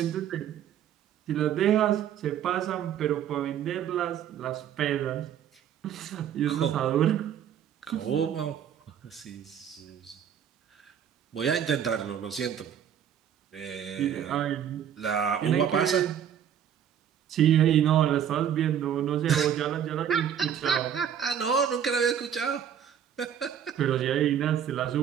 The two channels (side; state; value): left; quieter; 9.2 dB